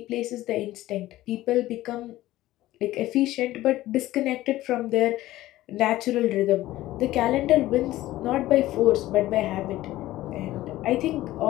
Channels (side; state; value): right; quieter; 15.9 dB